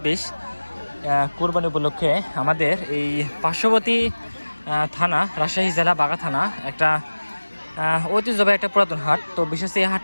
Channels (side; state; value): both; inverted; correlation -1.00